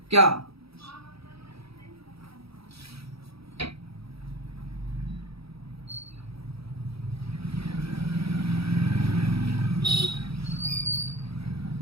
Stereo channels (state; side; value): late; left; 0.77 ms